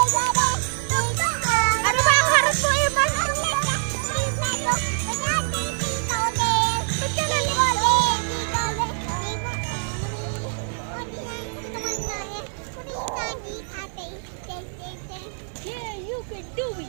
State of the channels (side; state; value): left; silent; 62 dB below the other